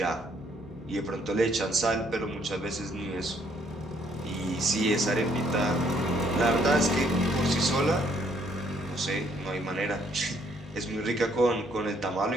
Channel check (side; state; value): both; normal; correlation 0.67